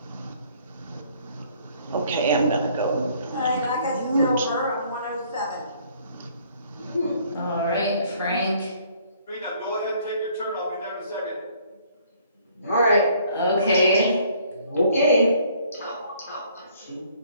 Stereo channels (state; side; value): inverted; both; correlation -0.60